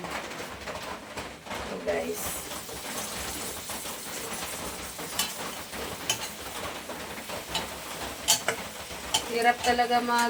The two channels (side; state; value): both; identical; correlation 1.00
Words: So guys. Hirap talaga